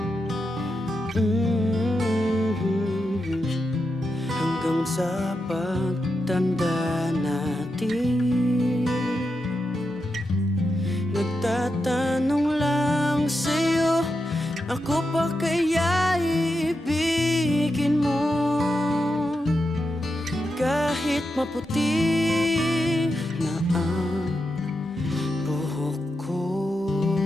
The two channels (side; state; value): both; normal; correlation 0.87